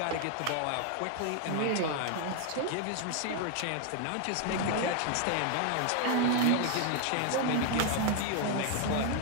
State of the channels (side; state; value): both; different; correlation 0.01